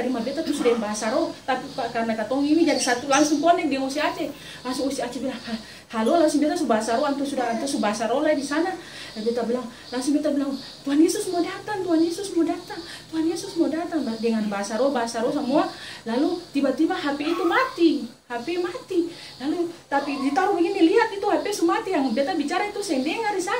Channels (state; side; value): identical; both; correlation 1.00